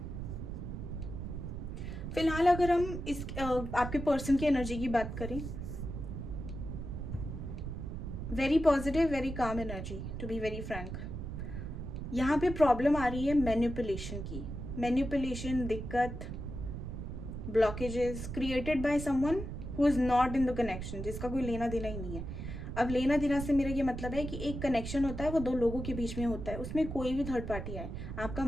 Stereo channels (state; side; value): noise; right; rumble, 6 dB below the sound